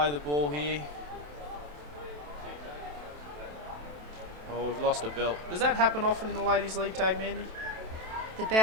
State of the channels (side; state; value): left; late; 27 ms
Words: the ball here. Oh, we've lost a belt. Does that happen often in the Ladies League tag, Mandy? The